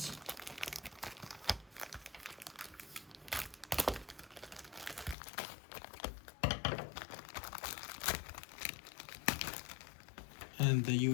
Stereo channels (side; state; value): right; drops out; at 5.2 s